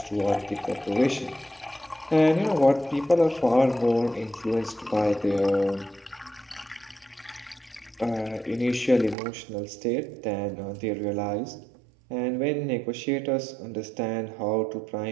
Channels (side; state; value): left; drops out; at 9.2 s